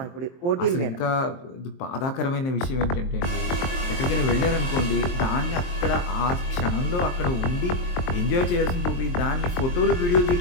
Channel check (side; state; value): right; late; 23 ms